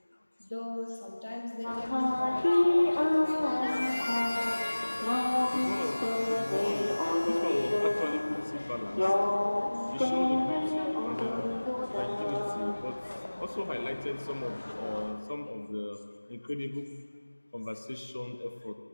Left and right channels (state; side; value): inverted; both; correlation -1.00